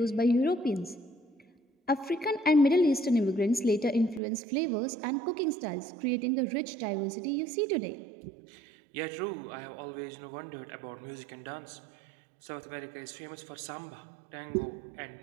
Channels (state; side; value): drops out; left; at 4.2 s